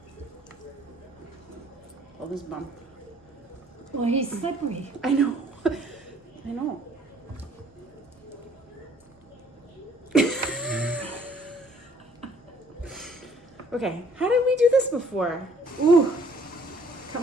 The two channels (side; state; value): both; normal; correlation 0.59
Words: Pull this bum. Well, he's slippery. I know. I know. Okay, how did we do this before? Ooh, come